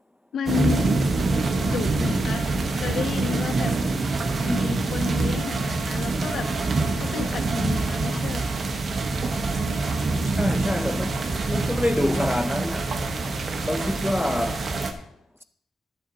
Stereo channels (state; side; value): normal; both; correlation 0.87